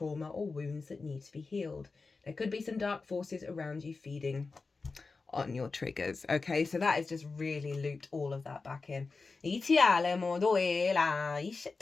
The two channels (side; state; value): right; quieter; 4.1 dB